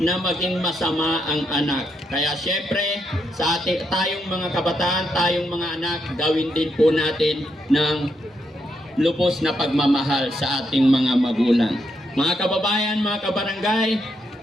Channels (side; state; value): both; normal; correlation 0.79